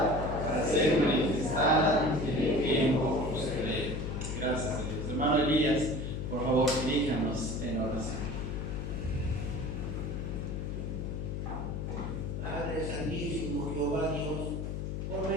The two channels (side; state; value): left; noise; hum, 4 dB below the sound